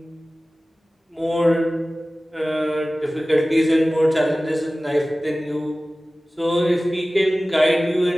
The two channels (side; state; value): both; normal; correlation 0.97